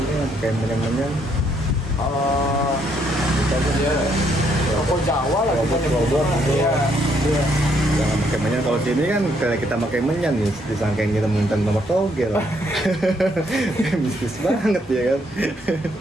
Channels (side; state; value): both; normal; correlation 0.71